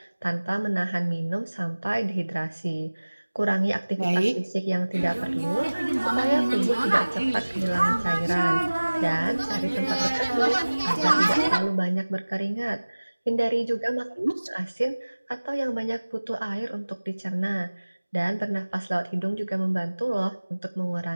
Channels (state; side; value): inverted; both; correlation -1.00